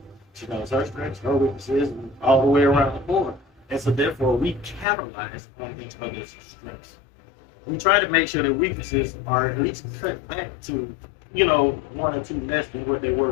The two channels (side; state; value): right; drops out; at 4.9 s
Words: She knows her strengths, her weaknesses, and all the way around the board. And so therefore, we capitalize on each other's strengths. We try to make sure that weaknesses are at least cut back to, 1 or 2 less than what they